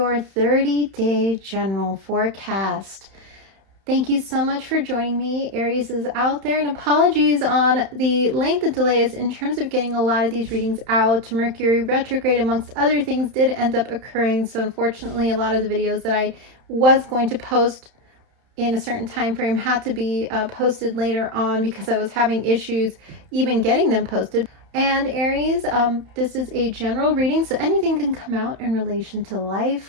30-day general forecast. Thank you so much for joining me. Aries is out there, and apologies on the length of delays in terms of getting a lot of these readings out. Mercury retrograde, amongst other things, did end up occurring, so unfortunately a lot of the videos that I was going to post in a certain time frame had to be posted later on because I was having issues even getting them posted. And Aries, this is a general reading, so anything can come out in relation to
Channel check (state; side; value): late; left; 31 ms